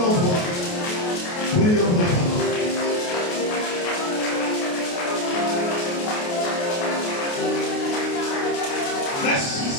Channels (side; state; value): right; late; 28 ms